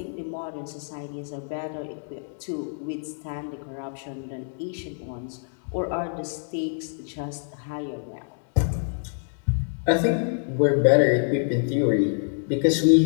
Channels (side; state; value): right; silent; 61 dB below the other